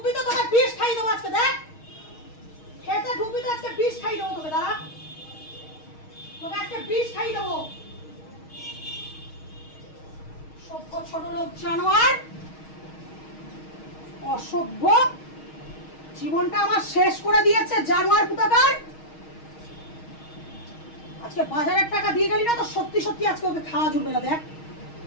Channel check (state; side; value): late; right; 6.4 ms